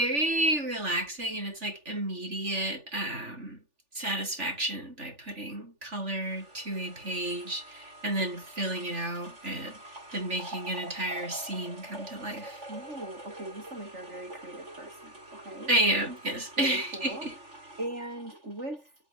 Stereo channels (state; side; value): late; left; 3.4 ms